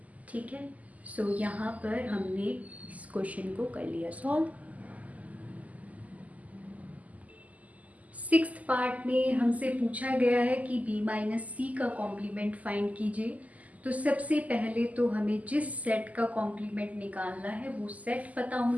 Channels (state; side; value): late; left; 0.075 ms